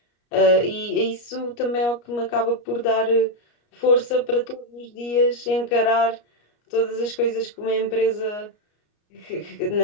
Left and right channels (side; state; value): right; late; 34 ms